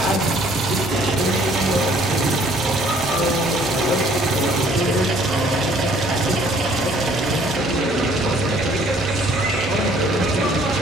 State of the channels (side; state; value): both; normal; correlation 0.59